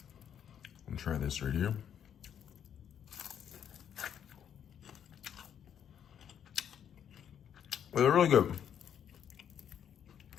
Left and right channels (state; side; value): quieter; right; 9.0 dB